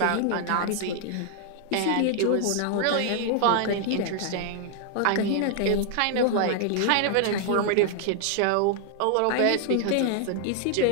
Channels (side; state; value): both; different; correlation 0.00